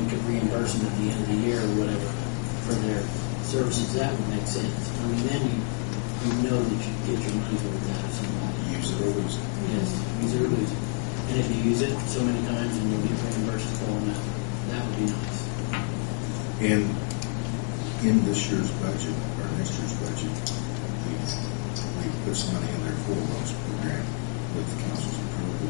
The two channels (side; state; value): right; quieter; 39.6 dB